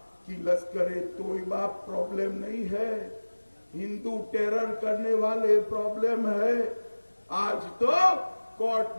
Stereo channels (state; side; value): inverted; both; correlation -1.00